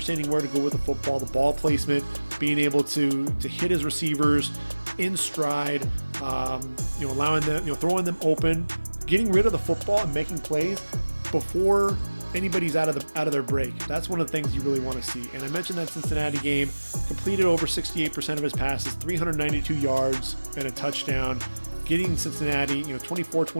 where to go with the football, the ball placement, being able to hit his receivers in stride, allowing them, throwing them open, getting rid of the football and making plays before anybody's out of their break. That's one of the things you really want to see. And I mentioned that Cincinnati game, completed over 68% of his passes, 392 yards and a touchdown, getting Cincinnati,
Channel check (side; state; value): both; inverted; correlation -1.00